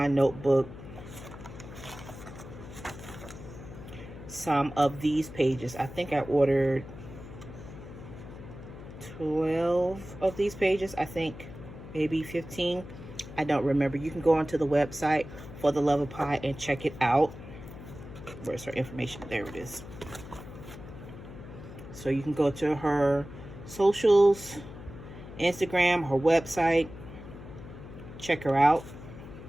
notebook some of these pages. I think I ordered 12 of these pages. I think maybe 15. I don't remember. You can go onto the website For the Love of Pi and check it out. Where's her information? There it is. So you can go to her socials, Instagram, her website, check her out.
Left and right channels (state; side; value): noise; left; hum, 14 dB below the sound